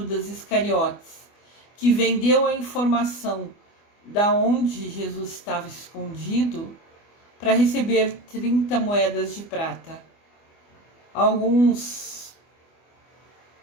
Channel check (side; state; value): right; late; 24 ms